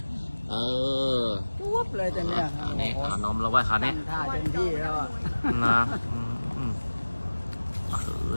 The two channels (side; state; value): both; inverted; correlation -1.00